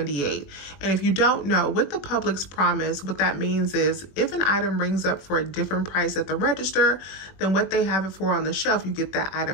And if you don't know, with the Publix promise, what that means is if an item rings up for a different price at the register than what they have it for on the shelf, you get that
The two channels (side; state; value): right; late; 21 ms